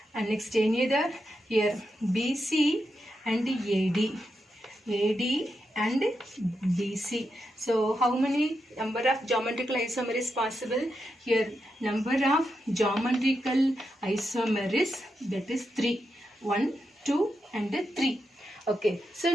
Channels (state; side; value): normal; both; correlation 0.86